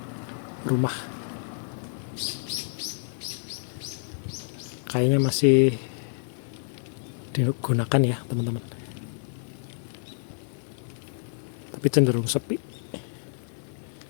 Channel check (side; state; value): right; silent; digital silence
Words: rumah, kayaknya masih digunakan ya teman-teman, tapi cenderung sepi.